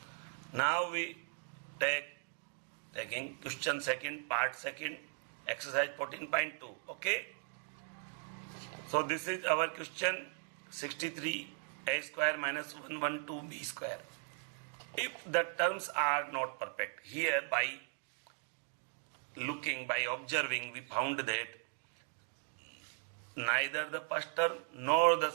Now we taking question second, part second, exercise 14.2. Okay. So this is our question 63 a square minus 112 b square. If the terms are not perfect, here by looking, by observing, we found that neither the first term nor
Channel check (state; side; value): silent; left; 52 dB below the other